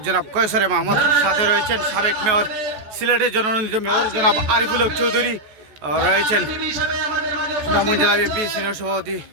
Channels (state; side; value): late; left; 14 ms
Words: জনাব কয়সরে মাহমুদ। সাথে রয়েছেন সাবেক মেয়র, সিলেটের জননন্দিত মেয়র জনাব আরিফুল হক চৌধুরী, রয়েছেন সুনামগঞ্জ জেলা বিএনপি সিনিয়র সভাপতি